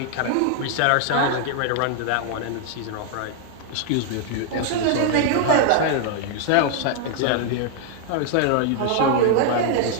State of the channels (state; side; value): different; both; correlation 0.00